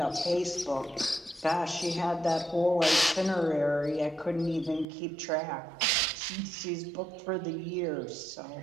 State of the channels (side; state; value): left; drops out; at 4.9 s